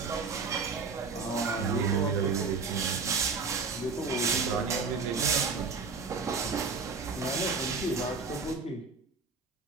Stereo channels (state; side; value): quieter; left; 4.6 dB